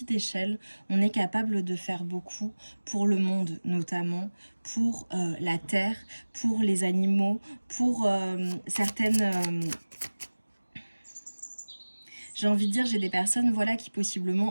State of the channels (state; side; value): inverted; both; correlation -1.00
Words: échelle, on est capable de faire beaucoup pour le monde notamment, pour la terre, pour les animaux, pour certaines... j'ai envie de dire, j'ai des personnes voilà, qui